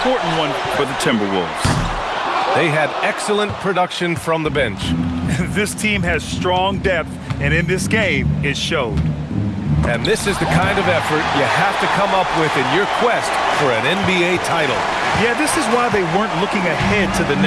one for the Timberwolves. They had excellent production from the bench. This team has strong depth, and in this game, it showed. And this is the kind of effort you have to come up with in your quest for an NBA title. Yeah, this is why they weren't looking ahead to the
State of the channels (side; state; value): both; identical; correlation 1.00